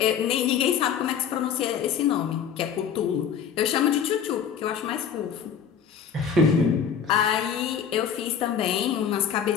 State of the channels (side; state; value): right; quieter; 7.6 dB